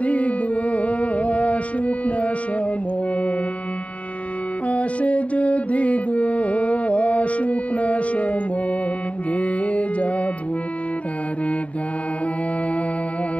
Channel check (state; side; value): late; right; 0.066 ms